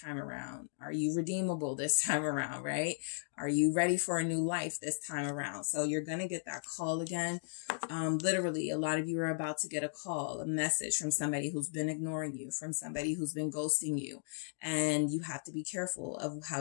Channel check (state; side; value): silent; right; digital silence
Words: around? Are you redeemable this time around, right? Are you ready for a new life this time around? So you're going to get that call again. Literally, a lot of you are about to get a call, a message from somebody who's been ignoring you, from somebody who's been ghosting you. And you have to be careful of how